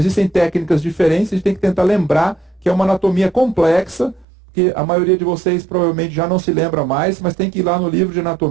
técnicas diferentes, a gente tem que tentar lembrar que é uma anatomia complexa, que a maioria de vocês provavelmente já não se lembra mais, mas tem que ir lá no livro de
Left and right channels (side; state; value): left; drops out; at 4.2 s